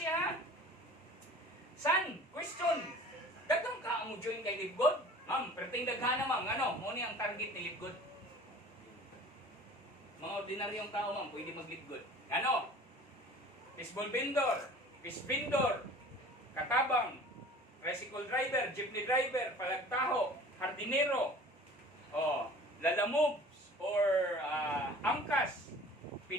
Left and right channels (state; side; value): normal; both; correlation 0.45